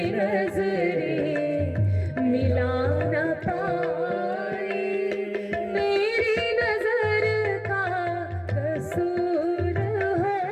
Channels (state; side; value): identical; both; correlation 1.00